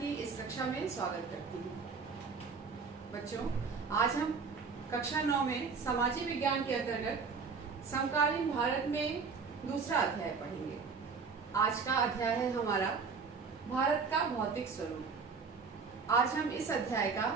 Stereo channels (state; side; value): quieter; left; 5.2 dB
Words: इस कक्षा में स्वागत करती हूँ। बच्चों, आज हम कक्षा 9 में सामाजिक विज्ञान के अंतर्गत समकालीन भारत में दूसरा अध्याय पढ़ेंगे। आज का अध्याय है हमारा भारत का भौतिक स्वरूप। आज हम इस अध्याय का